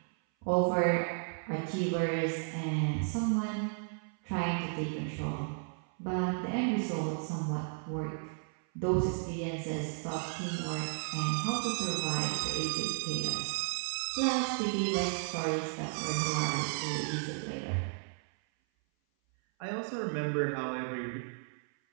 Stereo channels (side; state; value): left; silent; 55 dB below the other